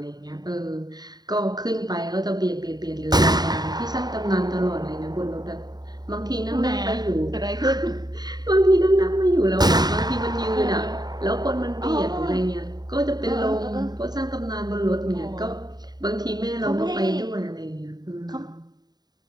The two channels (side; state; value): left; late; 0.20 ms